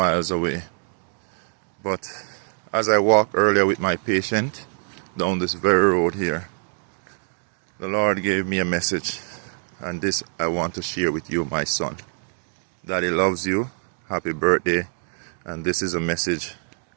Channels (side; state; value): left; silent; digital silence